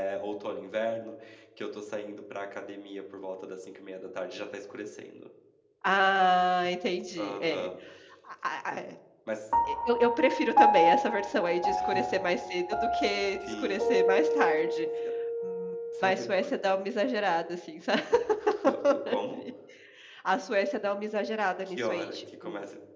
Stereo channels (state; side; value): identical; both; correlation 1.00